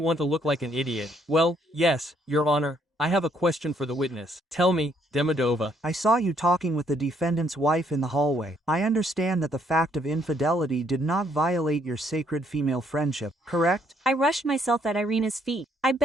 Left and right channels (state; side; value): normal; both; correlation 0.69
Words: to look like an idiot. Well, yes, Your Honor, I have a question for the witness. Tell me, Demidova. I saw you talking with the defendant's wife in the hallway. I understand that the fact of infidelity did not violate your sacred female friendship, correct? I rushed myself at Irina's feet. I